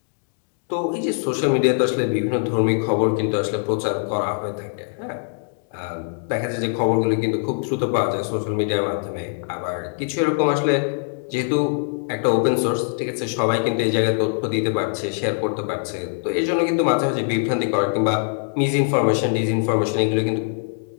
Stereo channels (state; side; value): silent; right; digital silence